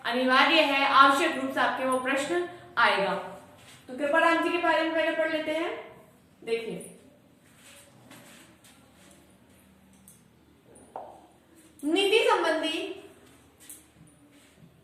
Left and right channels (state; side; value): identical; both; correlation 1.00